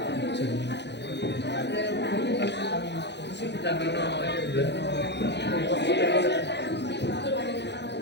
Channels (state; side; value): late; right; 0.50 ms